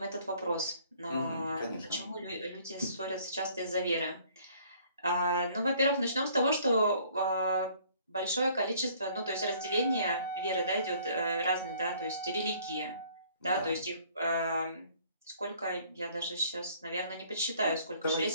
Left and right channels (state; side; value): inverted; both; correlation -0.58